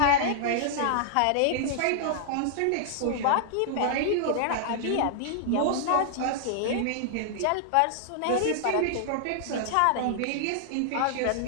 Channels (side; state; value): both; different; correlation -0.01